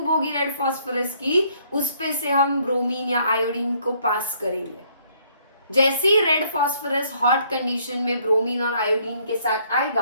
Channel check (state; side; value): inverted; both; correlation -0.66